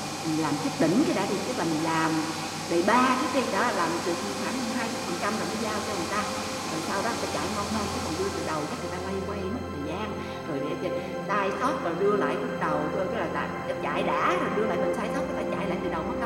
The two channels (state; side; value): identical; both; correlation 1.00